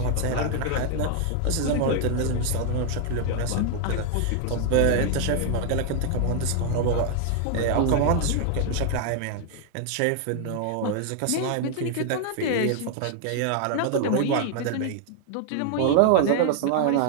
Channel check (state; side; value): different; both; correlation 0.00